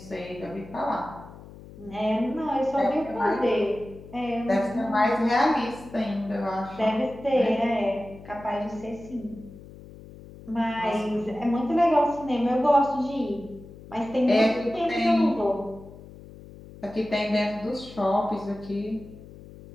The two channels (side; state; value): left; noise; hum, 18 dB below the sound